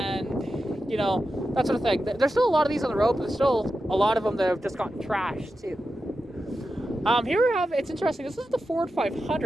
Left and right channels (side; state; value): both; normal; correlation 0.90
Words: you know, that sort of thing. There's still a lot of these on the road, but there's still a lot of them that have just gotten trashed, too. Here we have, it's interesting, this is the Ford